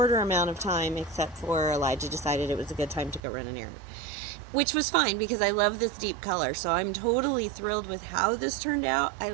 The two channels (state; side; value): drops out; left; at 3.2 s